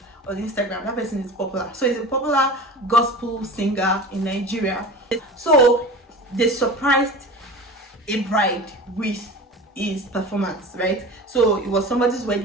on Instagram, that person is popular. So he's a popular gospel singer in Nigeria. So they surprised a bride with his performance, right? So it was somebody's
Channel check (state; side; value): normal; both; correlation 0.34